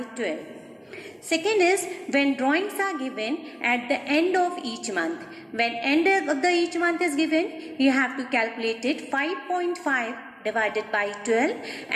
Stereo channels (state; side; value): identical; both; correlation 1.00